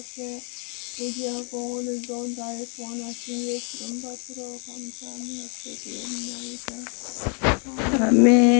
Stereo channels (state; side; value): quieter; right; 38.9 dB